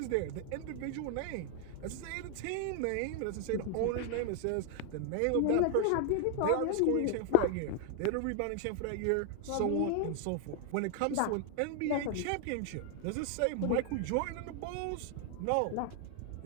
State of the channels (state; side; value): different; both; correlation 0.00